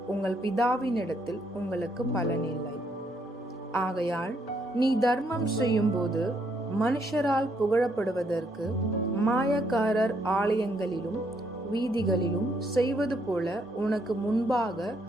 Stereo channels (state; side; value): normal; both; correlation 0.73